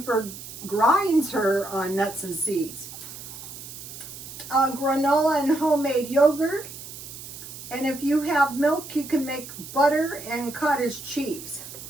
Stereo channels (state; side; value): noise; right; hiss, 13 dB below the sound